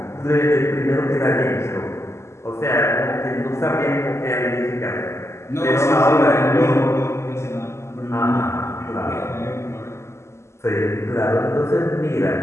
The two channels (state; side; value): late; right; 0.13 ms